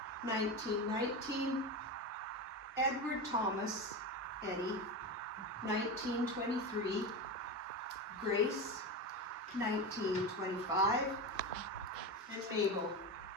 1919, Edward Thomas, Eddie, 1923, Grace, 1925, and Mabel,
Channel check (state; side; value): normal; both; correlation 0.21